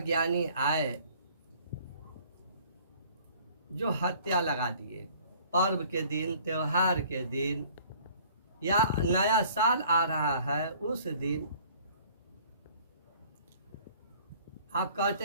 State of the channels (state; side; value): inverted; both; correlation -0.54